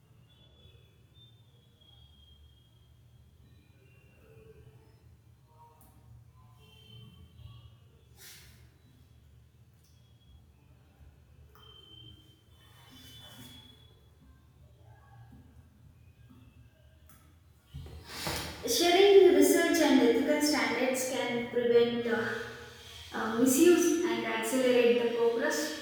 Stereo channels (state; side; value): identical; both; correlation 1.00